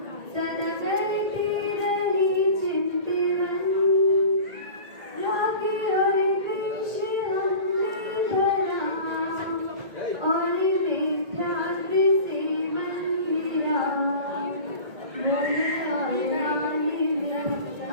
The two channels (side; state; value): left; late; 1.8 ms